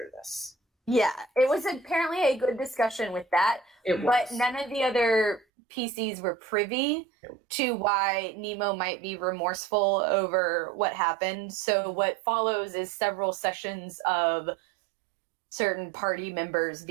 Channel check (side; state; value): left; drops out; at 5.5 s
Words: this. Yeah, it was apparently a good discussion with that, but none of the other PCs were privy to why Nemo might be remorseful over what happened. So what follows is several sessions of certain party members